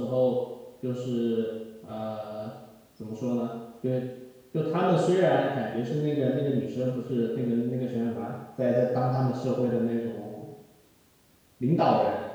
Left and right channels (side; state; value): both; identical; correlation 1.00